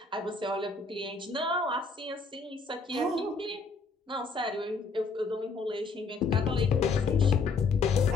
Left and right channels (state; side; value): quieter; right; 4.2 dB